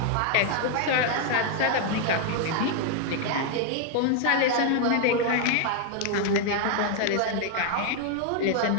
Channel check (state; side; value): different; both; correlation 0.00